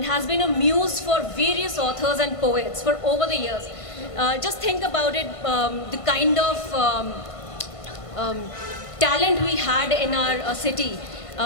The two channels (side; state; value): right; late; 1.5 ms